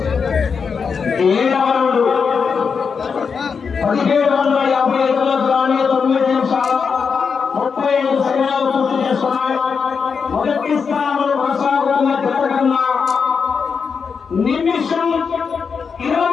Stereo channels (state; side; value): quieter; right; 5.8 dB